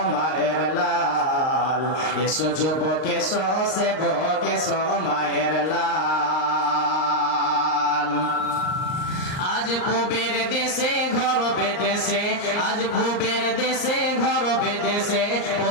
মায়ের লাল, এসো যুবক এসো সেবক এসো মায়ের লাল। আজ পূবের দেশে ঘর বেদেশে, আজ পূবের দেশে ঘর বেদেশে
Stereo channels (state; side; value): late; right; 38 ms